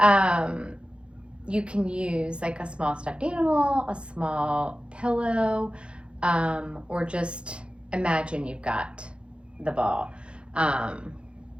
you can use like a small stuffed animal, a small pillow, or just imagine you've got the ball.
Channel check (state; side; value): late; left; 0.057 ms